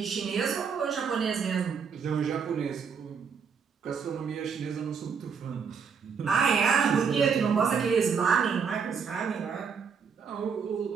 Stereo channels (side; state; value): left; quieter; 6.3 dB